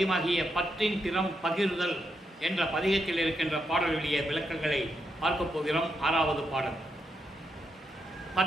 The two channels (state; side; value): normal; both; correlation 0.82